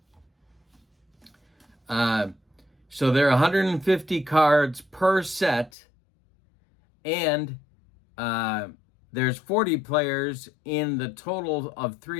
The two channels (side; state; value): right; drops out; at 5.7 s